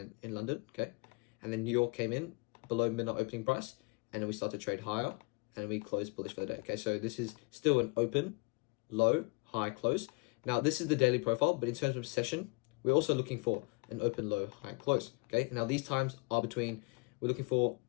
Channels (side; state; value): right; quieter; 28.9 dB